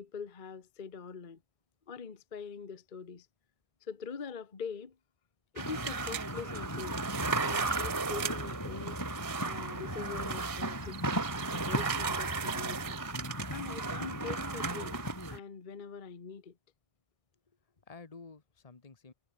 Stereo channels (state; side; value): late; right; 1.6 ms